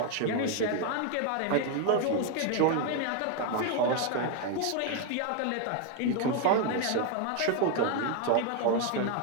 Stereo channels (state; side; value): different; both; correlation 0.01